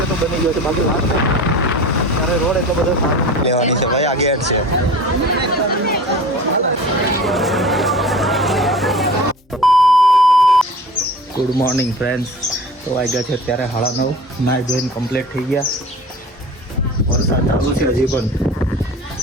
તો બની ગયો છે, બાકી લાસ્ટ ત્યારે રોડ એટલો બધો સારો લેવાની છે ભાઈ. આ ગેટ છે. Good morning friends. તો વાગ્યા છે અત્યારે 9:30. નાઈ ધોઈને કમ્પ્લીટ થઈ ગયા. વરસાદ ચાલુ છે હજી પણ.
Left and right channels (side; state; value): both; normal; correlation 0.39